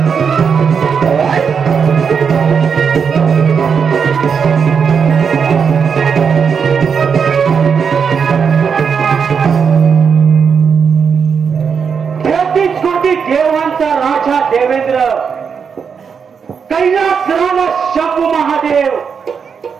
देवांचा राजा देवेंद्र, कैलास राजा शंभू महादेव,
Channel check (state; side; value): quieter; left; 6.4 dB